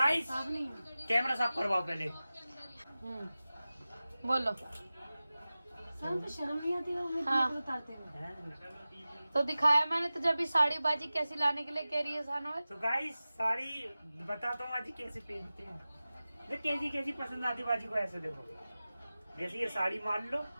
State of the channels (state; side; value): inverted; both; correlation -0.97